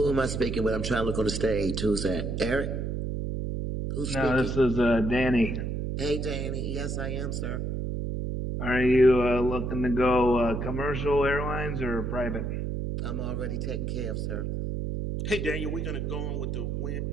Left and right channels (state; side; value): noise; right; hum, 2 dB below the sound